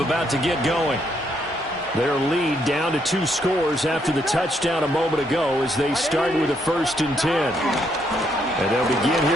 to get going. Their lead down to 2 scores after the touchdown a moment ago as they start with a 1st and 10. And they'll begin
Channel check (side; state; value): both; normal; correlation 0.74